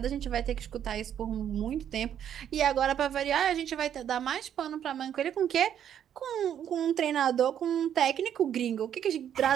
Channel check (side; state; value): left; quieter; 9.6 dB